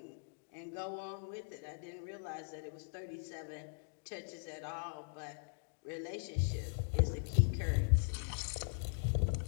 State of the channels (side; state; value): right; silent; digital silence